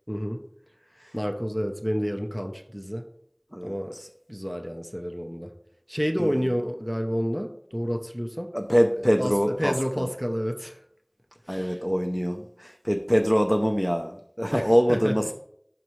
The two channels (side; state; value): both; identical; correlation 1.00